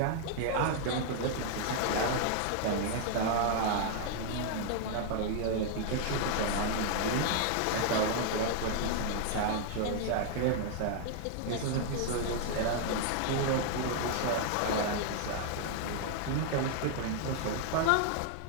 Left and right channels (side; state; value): both; different; correlation 0.00